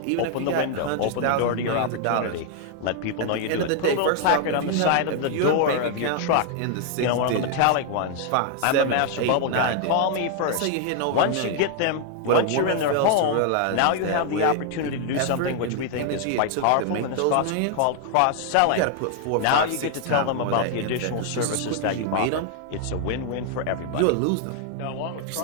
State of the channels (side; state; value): both; different; correlation 0.00